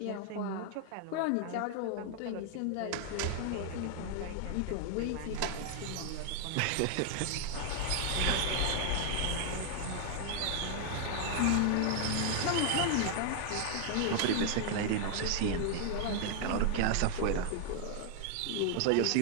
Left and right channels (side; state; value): both; different; correlation 0.00